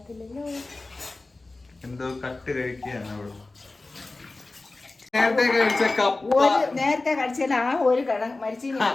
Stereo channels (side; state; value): right; quieter; 3.3 dB